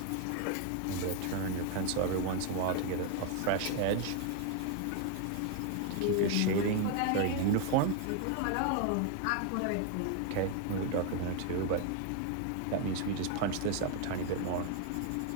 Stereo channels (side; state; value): both; different; correlation 0.01